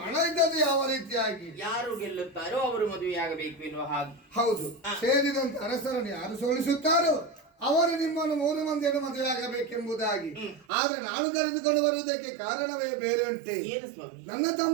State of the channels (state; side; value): drops out; left; at 10.7 s